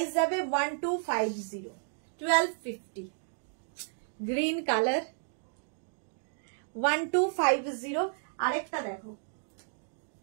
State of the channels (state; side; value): silent; left; digital silence